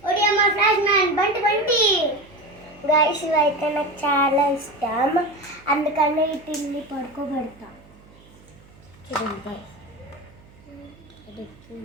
ఒడియమ్మ ఫ్లాష్ మ్యాన్ బంటి గాయ్స్. ఇవైతే నాకు చాలా ఇష్టం, అందుకనే ఈ తిల్లి పడుకోబెడతాం. చూడండి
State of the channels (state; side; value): noise; right; hum, 25 dB below the sound